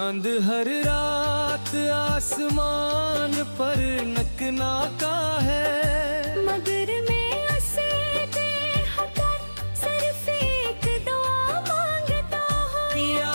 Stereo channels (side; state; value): both; inverted; correlation -1.00